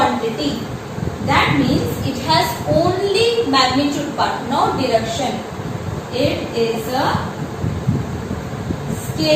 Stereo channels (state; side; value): identical; both; correlation 1.00